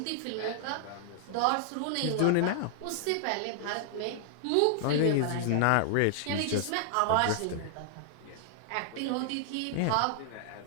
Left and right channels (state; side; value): different; both; correlation -0.01